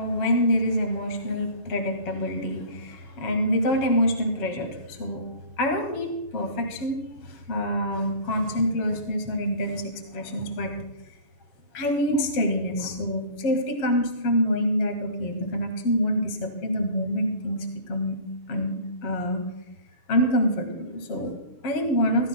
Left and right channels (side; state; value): right; late; 7.3 ms